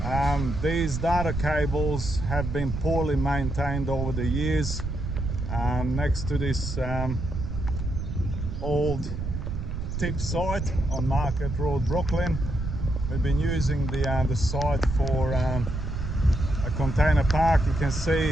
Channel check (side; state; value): right; noise; rumble, 4 dB below the sound